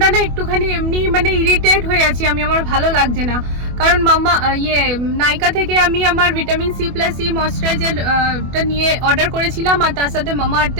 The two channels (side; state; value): left; late; 24 ms